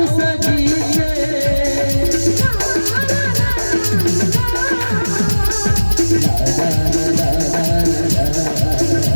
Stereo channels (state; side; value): inverted; both; correlation -1.00